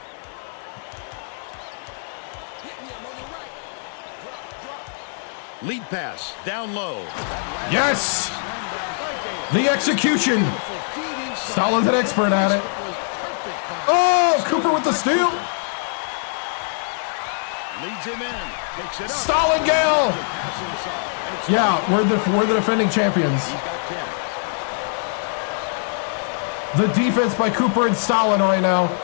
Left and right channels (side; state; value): right; silent; 64 dB below the other